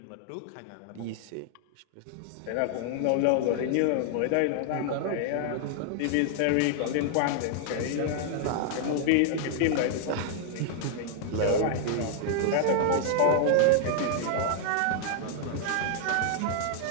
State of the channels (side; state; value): both; different; correlation -0.01